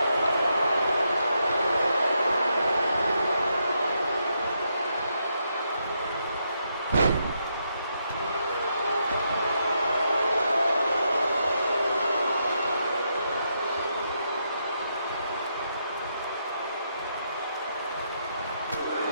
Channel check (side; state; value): both; inverted; correlation -0.80